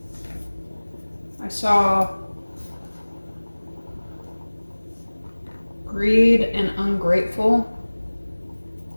I saw greed and ungrateful.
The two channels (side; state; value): both; inverted; correlation -1.00